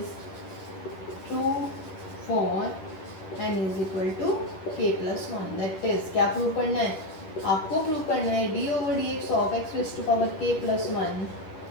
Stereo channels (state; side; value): late; right; 11 ms